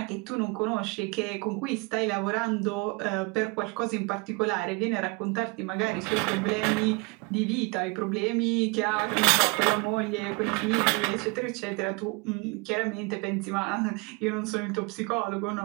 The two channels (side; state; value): left; quieter; 28.4 dB